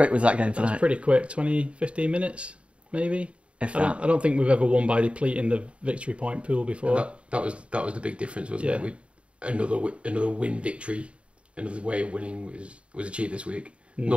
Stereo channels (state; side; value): late; left; 0.060 ms